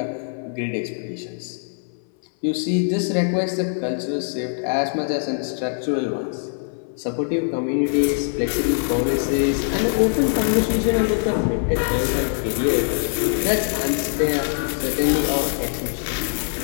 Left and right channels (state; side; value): silent; right; 60 dB below the other